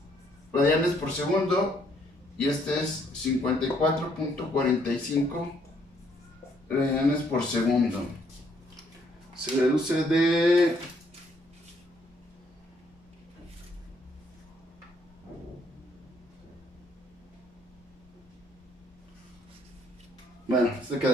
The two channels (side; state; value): both; normal; correlation 0.68